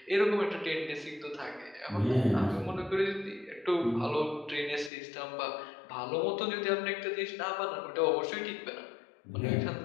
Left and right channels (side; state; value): right; drops out; at 4.9 s